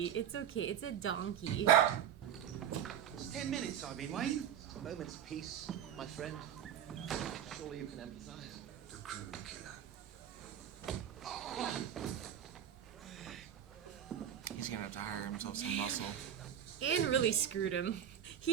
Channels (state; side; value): quieter; left; 9.7 dB